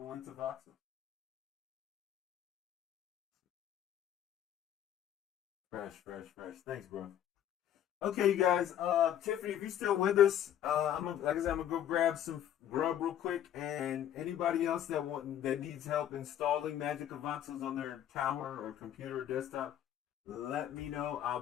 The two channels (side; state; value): right; quieter; 10.7 dB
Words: into Voxel. Fresh, fresh, fresh. Thanks, bro. Okay, you guys. Tiffany, if you're still with us, like I said, I'm gonna go grab some grub real quick. And anybody else that needs help installing Magic Avances on their tower or computer or desktop, let me know. I'll